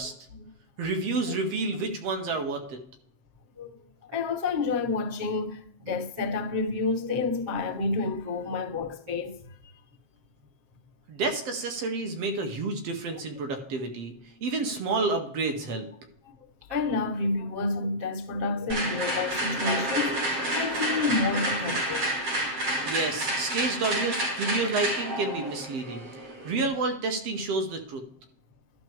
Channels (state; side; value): late; left; 7.6 ms